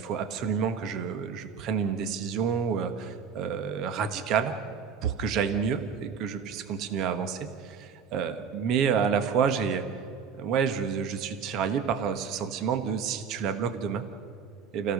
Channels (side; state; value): left; quieter; 6.5 dB